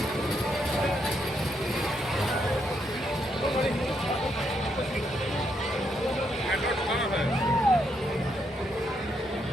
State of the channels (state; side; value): normal; both; correlation 0.77